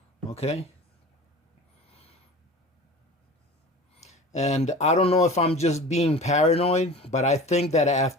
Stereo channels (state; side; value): normal; both; correlation 0.37